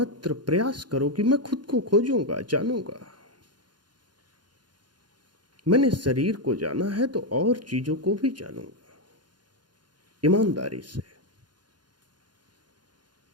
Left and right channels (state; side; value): late; left; 0.71 ms